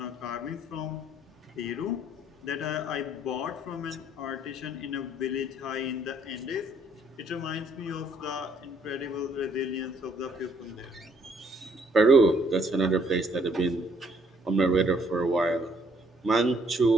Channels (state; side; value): normal; both; correlation 0.66